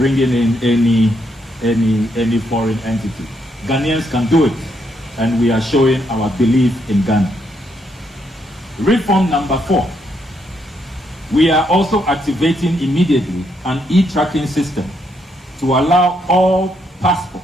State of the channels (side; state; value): both; normal; correlation 0.76